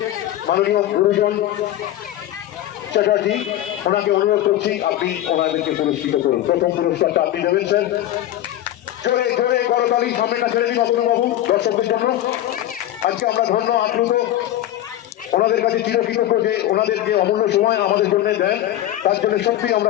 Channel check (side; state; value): right; quieter; 13.2 dB